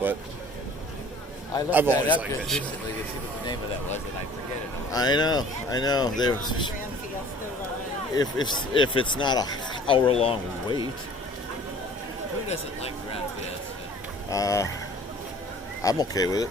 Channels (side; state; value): both; normal; correlation 0.49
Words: I looked I've that always up liked just that show. recently to see what the name of that was, and I forget it. I know. We were on the Grand Fiesta ride. If it's not an hour-long wait, Who doesn't like Grand Fiesta? I'm okay with it.